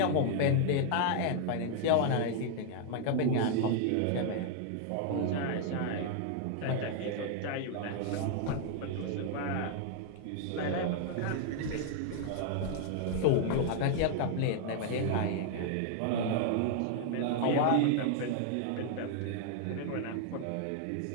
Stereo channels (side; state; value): both; different; correlation 0.00